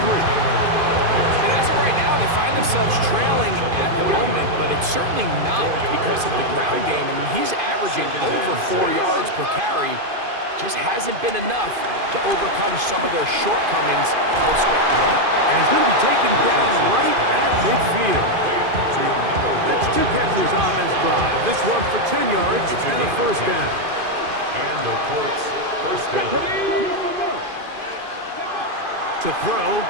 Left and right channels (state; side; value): late; left; 2.5 ms